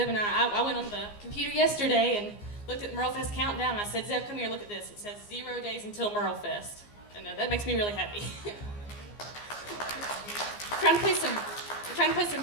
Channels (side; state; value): right; late; 15 ms